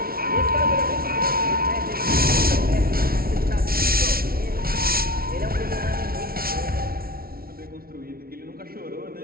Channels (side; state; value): left; late; 0.44 ms